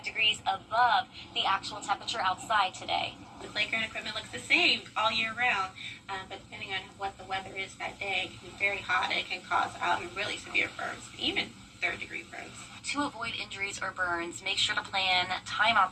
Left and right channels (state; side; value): identical; both; correlation 1.00